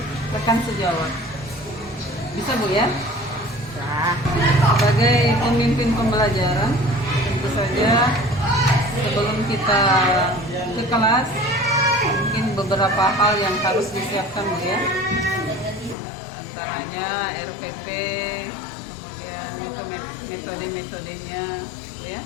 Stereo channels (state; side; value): drops out; right; at 16.0 s